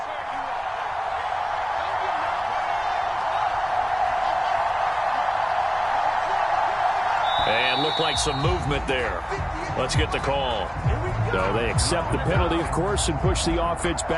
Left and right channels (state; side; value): identical; both; correlation 1.00